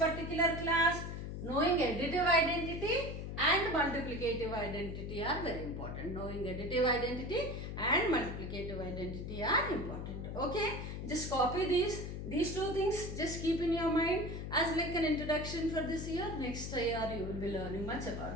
class? Knowing additive identity and multiplicative identity are very important. Knowing additive identity and multiplicative identity are important. Okay, just copy these two things. Just keep in your mind as like an introduction for this year. Next year you will be learning much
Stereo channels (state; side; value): noise; left; hum, 6 dB below the sound